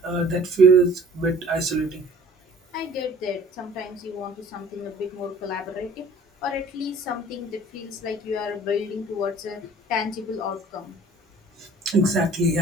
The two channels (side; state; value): both; normal; correlation 0.50